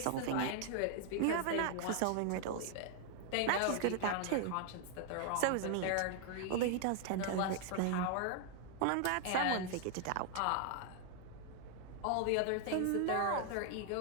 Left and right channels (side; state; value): both; different; correlation 0.00